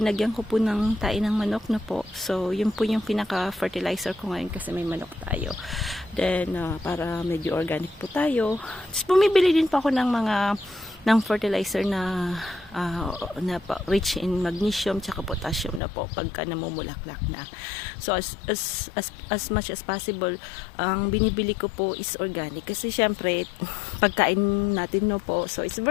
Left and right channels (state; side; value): drops out; right; at 15.8 s